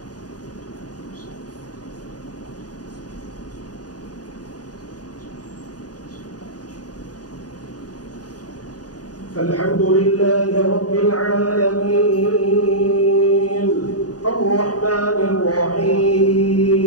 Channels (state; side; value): late; right; 0.68 ms